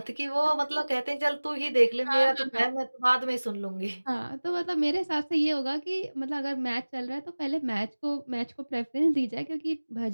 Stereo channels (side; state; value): both; inverted; correlation -1.00